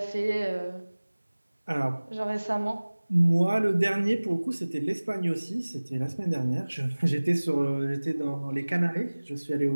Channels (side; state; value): both; inverted; correlation -1.00